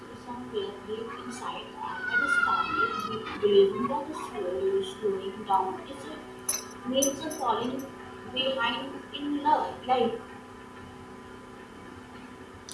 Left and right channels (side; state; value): both; identical; correlation 1.00